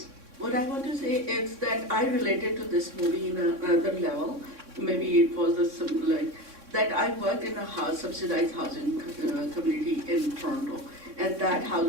What I want to say is that I related to this movie in another level. Maybe it was that I worked in a subsidized housing community in Toronto, and that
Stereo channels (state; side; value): late; left; 3.6 ms